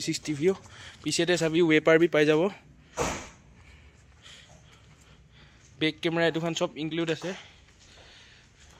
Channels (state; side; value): identical; both; correlation 1.00